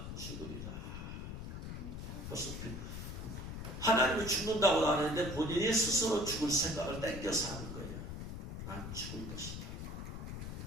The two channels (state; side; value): noise; left; rumble, 7 dB below the sound